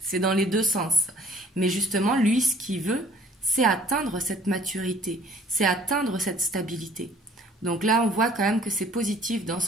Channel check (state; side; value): normal; both; correlation 0.54